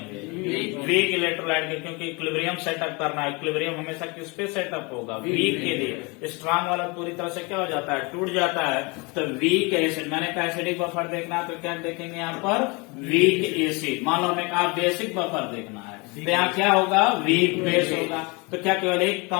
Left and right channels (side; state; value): right; quieter; 28.1 dB